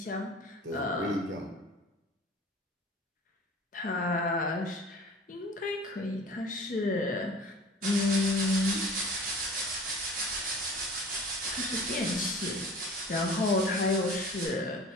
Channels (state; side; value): normal; both; correlation 0.42